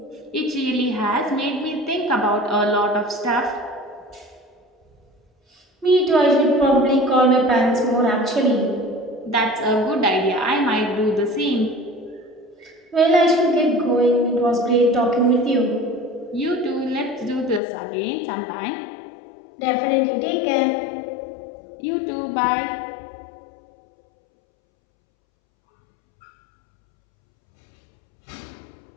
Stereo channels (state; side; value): drops out; right; at 17.6 s